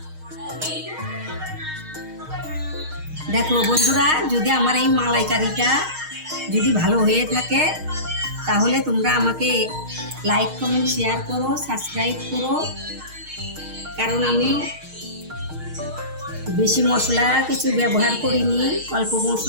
দেখো বন্ধুরা, যদি আমার এই মালাইকারিটা যদি ভালো হয়ে থাকে তাহলে তোমরা আমাকে লাইক কমেন্ট শেয়ার করো, সাবস্ক্রাইব করো। কারণ আমি বেশি মশলা কিছু ব্যবহার করিনি, অল্প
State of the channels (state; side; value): late; left; 6.4 ms